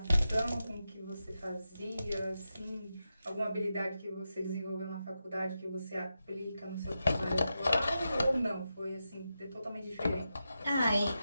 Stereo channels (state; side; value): inverted; both; correlation -0.89